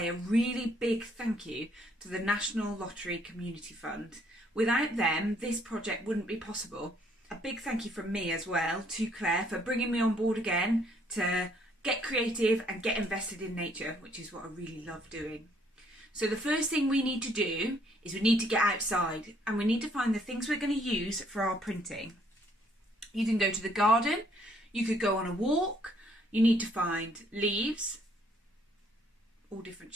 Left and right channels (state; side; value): normal; both; correlation 0.66